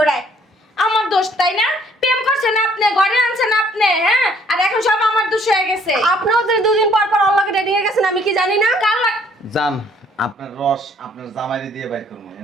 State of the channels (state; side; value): normal; both; correlation 0.62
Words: আমার দোষ, তাই না? প্রেম করছেন আপনি, ঘরে আনছেন আপনি, হ্যাঁ, আর এখন সব আমার দোষ হয়ে গেছে। আপনিও তো দুদিন পর পর অল্লাহকে ডেটিং এ গেছেন, আমি কি জানি না? কাল যান আপনার রস আপনার জামাইরে দিয়ে বাইর করবো,